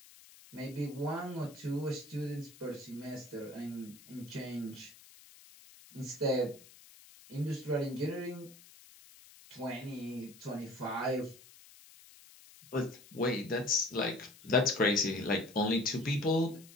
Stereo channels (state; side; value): noise; left; hiss, 21 dB below the sound